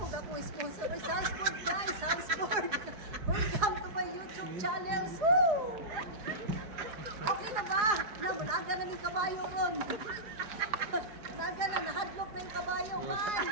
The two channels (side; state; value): left; late; 4.7 ms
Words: ako sponsor. Ay, Salzburg guys, Salzburg. Welcome to my YouTube channel. Woo! Okay na ba? Namulaga na yung kabayo ron. Nanaga na, nahadlok na yung kabayo.